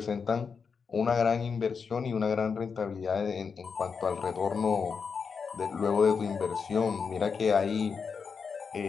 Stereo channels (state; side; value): quieter; right; 5.7 dB